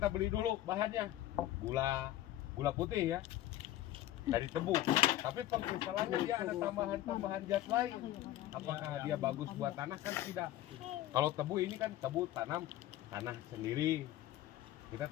beli dulu bahannya gula putih ya dari tebu, tapi pengkristalannya dia ada tambahan zat lain. Apakah dia bagus buat tanah? Kan tidak. Kalau tebu ini kan tebu tanah sendiri, kita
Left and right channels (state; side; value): quieter; right; 14.2 dB